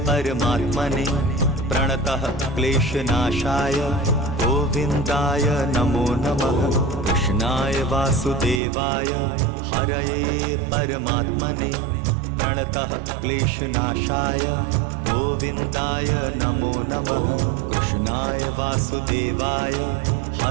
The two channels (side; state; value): left; drops out; at 8.6 s